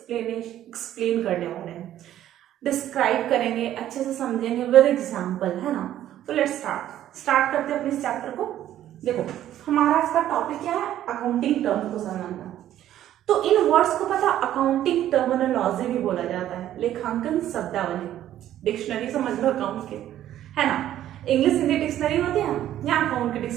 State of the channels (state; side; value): quieter; left; 12.2 dB